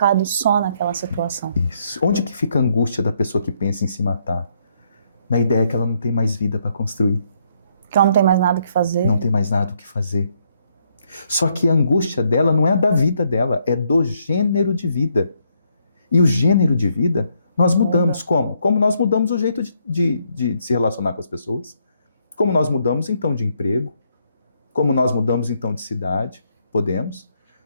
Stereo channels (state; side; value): inverted; both; correlation -0.73